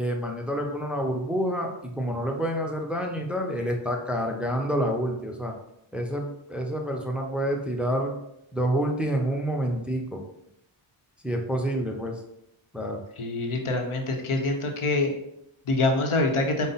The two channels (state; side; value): normal; both; correlation 0.45